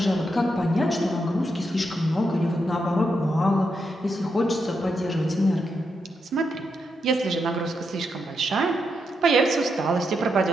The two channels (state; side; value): normal; both; correlation 0.83